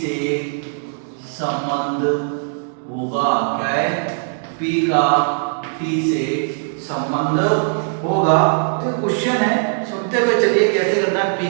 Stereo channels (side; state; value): left; silent; digital silence